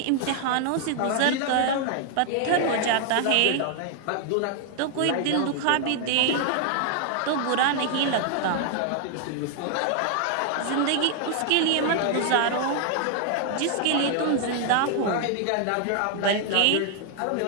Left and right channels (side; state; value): both; different; correlation 0.00